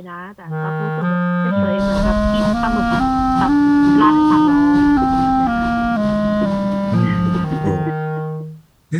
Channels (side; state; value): both; identical; correlation 1.00